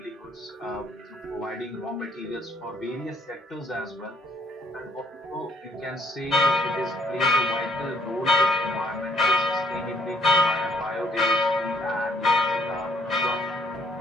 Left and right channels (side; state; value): both; normal; correlation 0.65